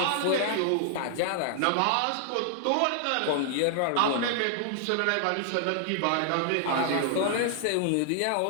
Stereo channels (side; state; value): both; different; correlation 0.00